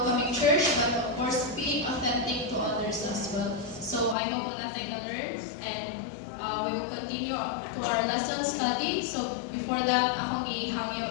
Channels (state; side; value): drops out; right; at 4.2 s